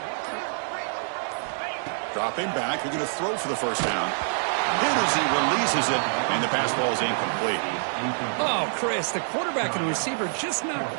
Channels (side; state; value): left; silent; 61 dB below the other